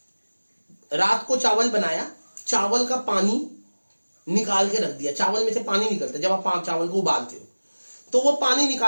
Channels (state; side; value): inverted; both; correlation -1.00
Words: रात को चावल बनाया, चावल का पानी निकाल के रख दिया। चावल में से पानी निकलता है जब आप चावल को उबालते हो, तो वो पानी